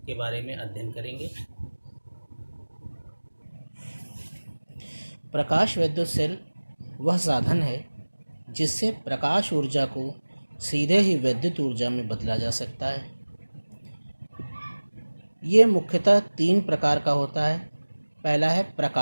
के बारे में अध्ययन करेंगे। प्रकाश वैद्युत सेल वह साधन है जिससे प्रकाश ऊर्जा को सीधे ही वैद्युत ऊर्जा में बदला जा सकता है। ये मुख्यतः 3 प्रकार का होता है। पहला है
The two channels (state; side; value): inverted; both; correlation -1.00